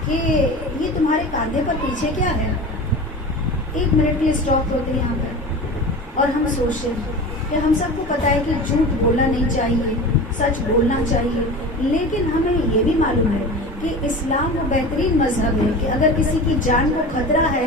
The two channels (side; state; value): both; normal; correlation 0.32